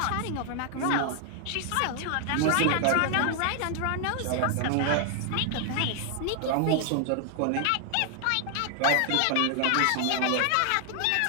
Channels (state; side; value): different; both; correlation 0.00